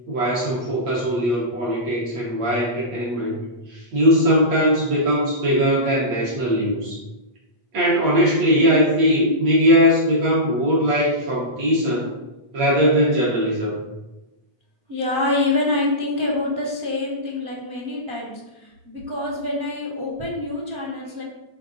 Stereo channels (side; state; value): left; late; 8.4 ms